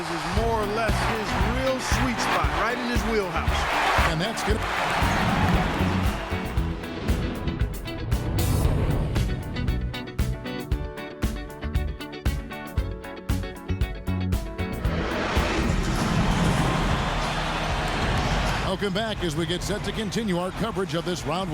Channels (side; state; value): both; identical; correlation 1.00